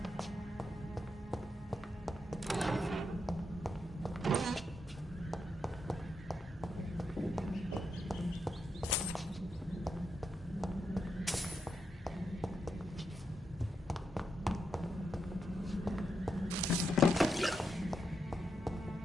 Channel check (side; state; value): both; normal; correlation 0.84